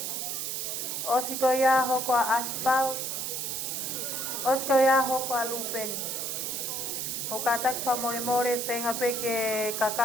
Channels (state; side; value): noise; right; hiss, 3 dB below the sound